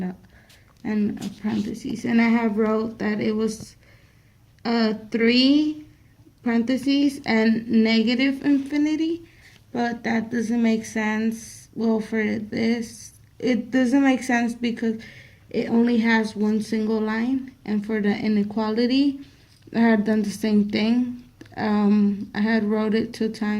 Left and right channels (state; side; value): identical; both; correlation 1.00